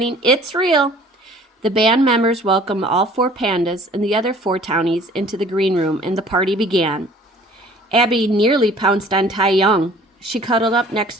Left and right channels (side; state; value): both; normal; correlation 0.52